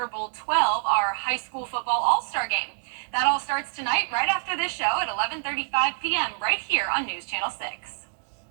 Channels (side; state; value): left; silent; digital silence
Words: Bowl 12, our high school football all-star game. That all starts tonight right after this show at 11:35 p.m. right here on News Channel 6.